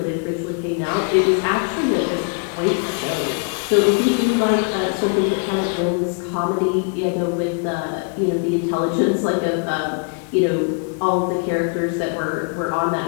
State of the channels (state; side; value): quieter; right; 38.8 dB